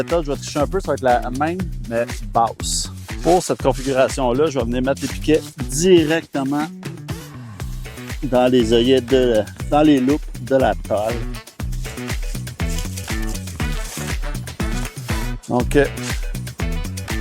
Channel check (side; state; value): both; identical; correlation 1.00